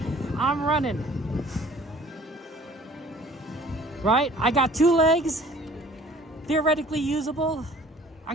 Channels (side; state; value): both; normal; correlation 0.52